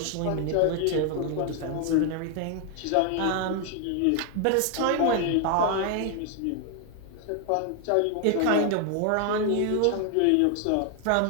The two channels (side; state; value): both; different; correlation 0.00